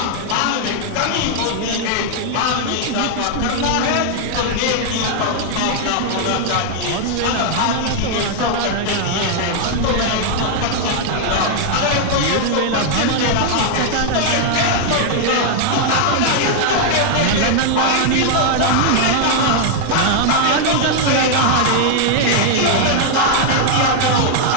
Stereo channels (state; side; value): different; both; correlation 0.00